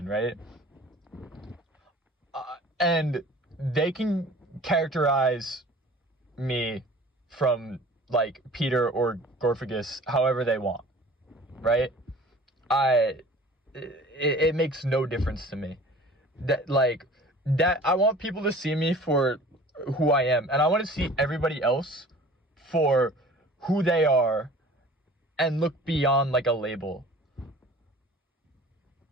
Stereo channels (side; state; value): both; normal; correlation 0.46